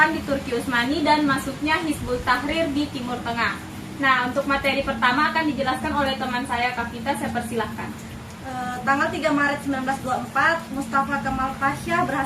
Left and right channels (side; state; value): both; identical; correlation 1.00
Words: di Turki Utsmani dan masuknya Hizbut Tahrir di Timur Tengah. Nah, untuk materi pertama akan dijelaskan oleh teman saya, Kavita. Saya persilahkan. Tanggal 3 Maret 1924, Mustafa Kemal Pasha